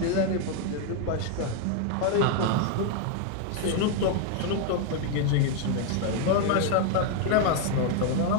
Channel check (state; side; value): different; both; correlation 0.01